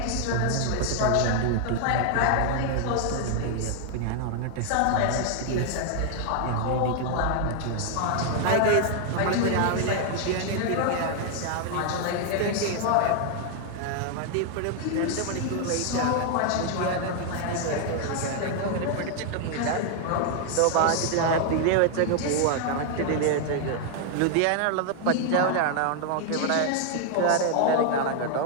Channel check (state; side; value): different; both; correlation 0.00